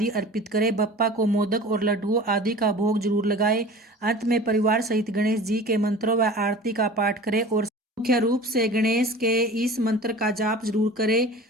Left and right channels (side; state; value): both; normal; correlation 0.40